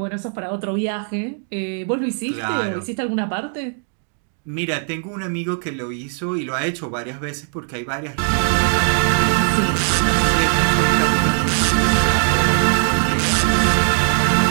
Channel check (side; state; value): left; silent; 59 dB below the other